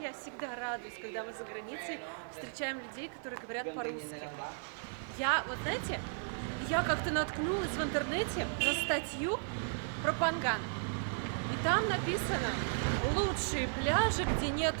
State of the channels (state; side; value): silent; left; digital silence